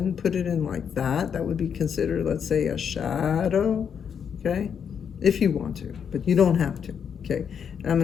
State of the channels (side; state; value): right; quieter; 7.5 dB